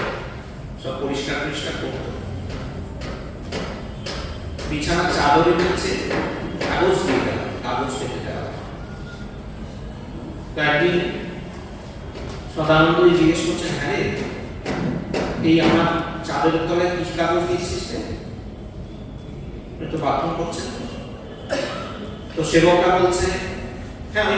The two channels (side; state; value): both; identical; correlation 1.00